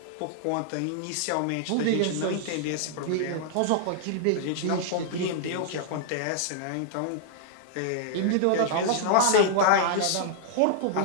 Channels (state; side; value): different; both; correlation -0.01